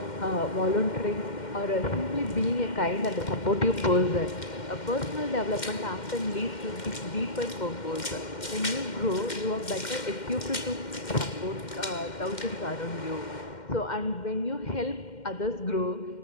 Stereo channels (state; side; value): late; right; 2.1 ms